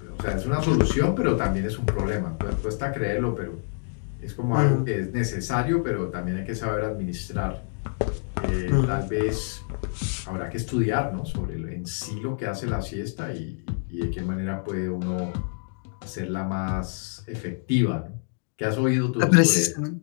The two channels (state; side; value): silent; right; digital silence